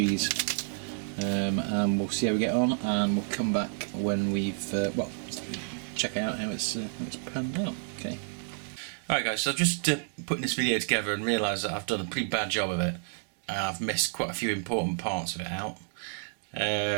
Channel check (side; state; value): left; silent; 58 dB below the other